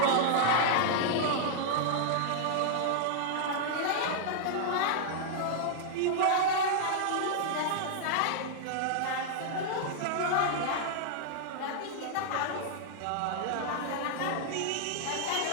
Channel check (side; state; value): both; different; correlation -0.01